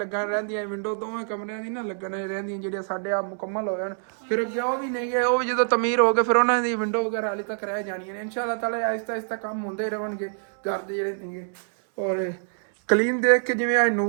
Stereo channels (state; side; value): silent; left; 61 dB below the other